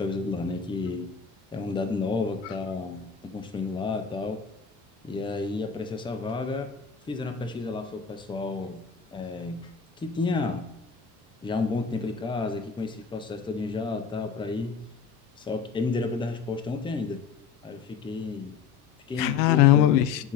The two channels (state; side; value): quieter; right; 6.5 dB